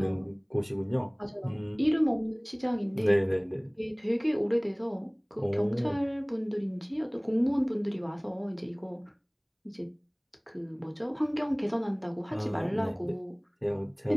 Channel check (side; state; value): both; identical; correlation 1.00